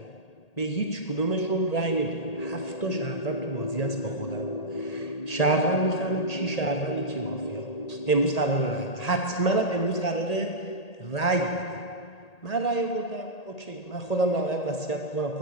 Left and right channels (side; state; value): right; late; 1.8 ms